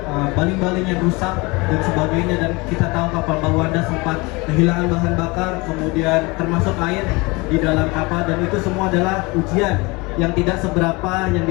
baling-baling yang rusak dan sebagainya. Dan kita tahu kapal Mbak Wanda sempat kehilangan bahan bakar, kemudian termasuk air di dalam kapal. Dan itu semua adalah ujian yang tidak seberapa yang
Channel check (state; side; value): quieter; right; 25.2 dB